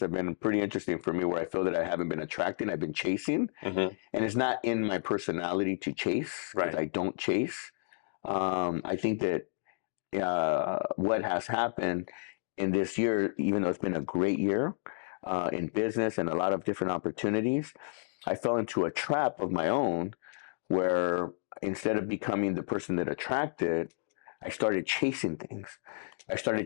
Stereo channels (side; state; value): right; silent; digital silence